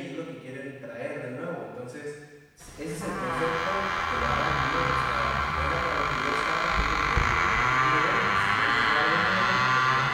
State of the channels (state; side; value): identical; both; correlation 1.00